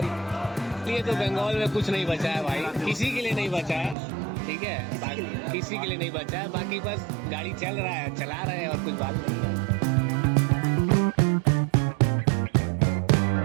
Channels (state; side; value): drops out; left; at 4.0 s